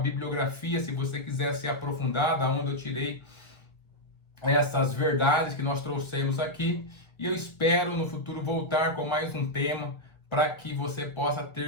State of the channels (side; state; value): right; late; 1.6 ms